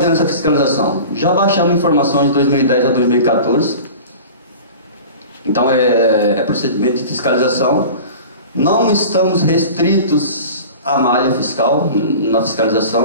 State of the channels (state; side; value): inverted; both; correlation -0.38